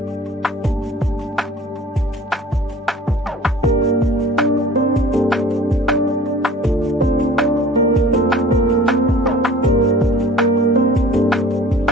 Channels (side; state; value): both; normal; correlation 0.46